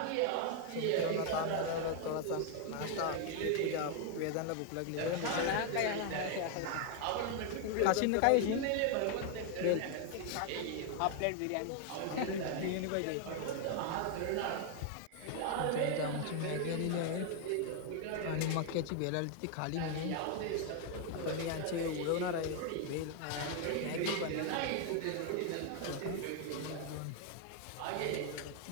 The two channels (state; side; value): different; both; correlation 0.00